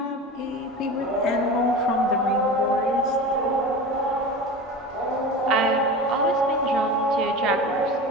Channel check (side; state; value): both; normal; correlation 0.31